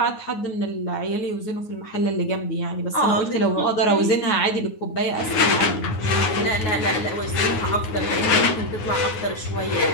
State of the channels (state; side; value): late; right; 9.4 ms